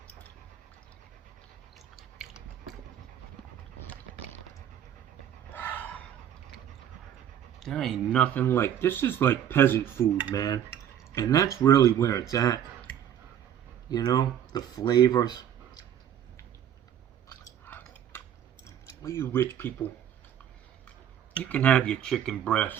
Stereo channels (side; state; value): left; quieter; 10.0 dB